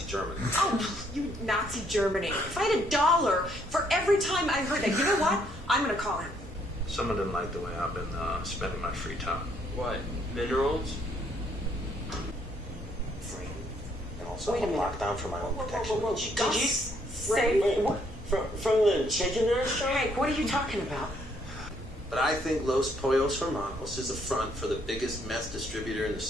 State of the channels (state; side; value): normal; both; correlation 0.69